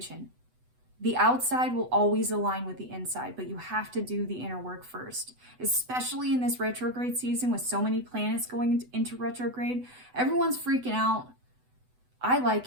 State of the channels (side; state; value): left; late; 8.0 ms